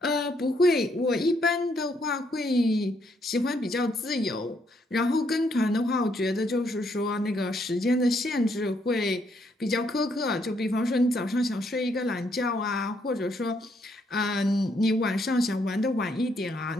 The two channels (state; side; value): normal; both; correlation 0.73